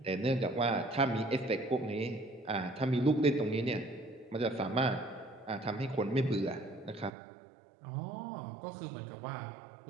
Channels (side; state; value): left; drops out; at 7.1 s